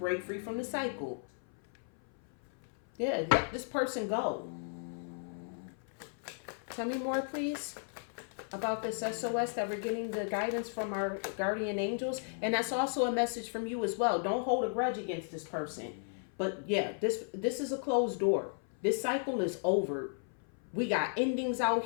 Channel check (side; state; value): right; silent; 55 dB below the other